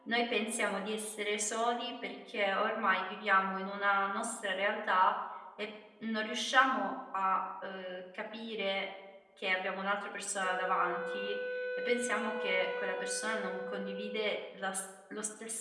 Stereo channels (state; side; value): identical; both; correlation 1.00